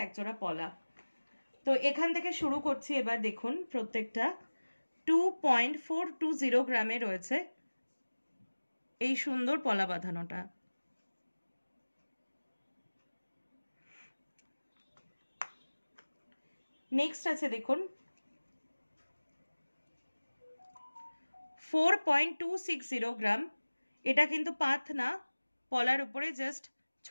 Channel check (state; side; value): inverted; both; correlation -1.00